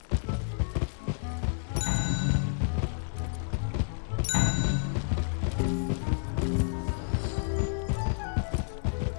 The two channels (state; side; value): silent; right; digital silence